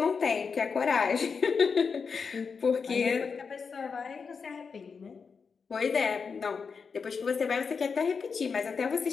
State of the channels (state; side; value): quieter; right; 5.5 dB